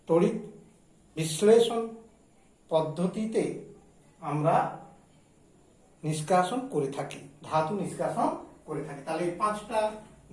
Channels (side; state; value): both; identical; correlation 1.00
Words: তড়িৎ বিশ্লেষণ পদ্ধতিতে আমরা নিষ্কাশন করে থাকি, ধাতু নিষ্কাশন করে থাকি। তাহলে এই 5টা